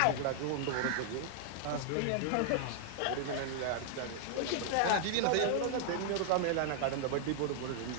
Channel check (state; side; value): different; both; correlation -0.01